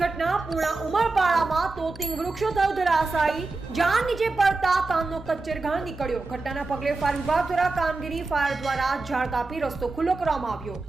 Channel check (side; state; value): left; quieter; 3.5 dB